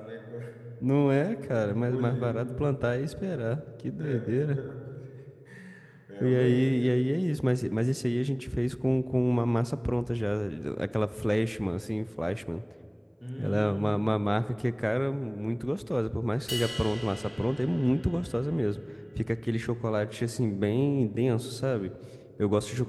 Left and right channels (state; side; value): identical; both; correlation 1.00